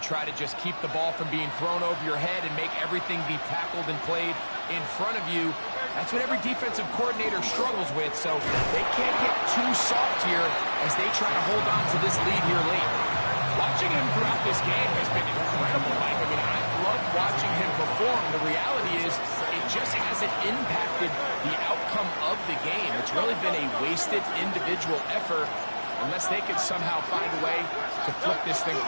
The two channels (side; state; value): both; inverted; correlation -1.00